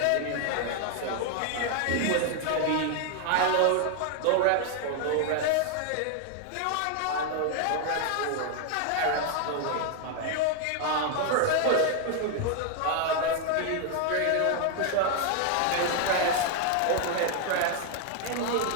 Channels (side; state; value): both; different; correlation 0.00